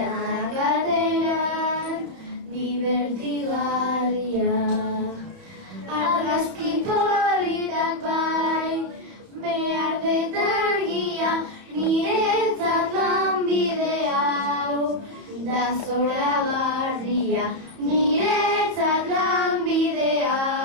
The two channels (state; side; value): late; left; 31 ms